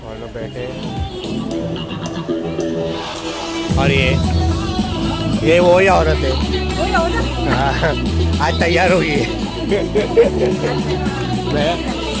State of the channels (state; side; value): identical; both; correlation 1.00